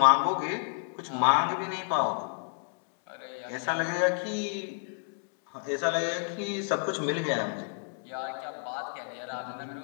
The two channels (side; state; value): right; silent; digital silence